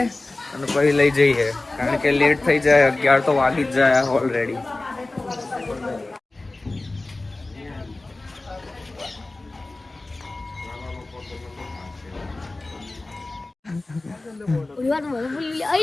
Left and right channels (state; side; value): quieter; right; 3.0 dB